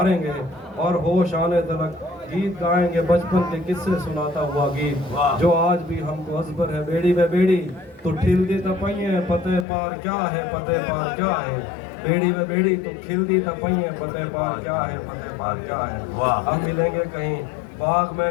और होश आने तक गीत गाएंगे, बचपन के किस्से सुनाता हुआ गीत जो आज भी हमको अजबर है। बेड़ी में बेड़ी तो ठिलदी तपइए पते पार क्या है, पते पार क्या है, बेड़ी में बेड़ी तो खिलदी तपइए पते पार क्या है, पते पार क्या है। हम मिलेंगे कहीं बाग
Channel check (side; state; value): right; drops out; at 9.7 s